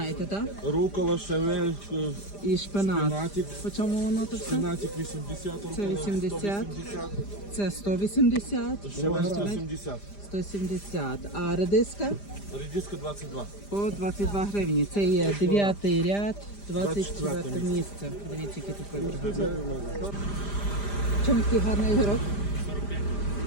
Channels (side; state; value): right; late; 5.0 ms